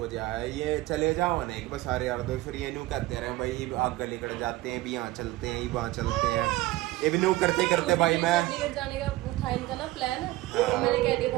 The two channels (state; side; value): quieter; left; 17.6 dB